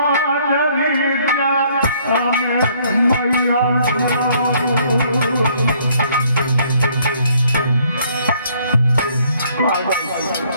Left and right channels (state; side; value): inverted; both; correlation -0.64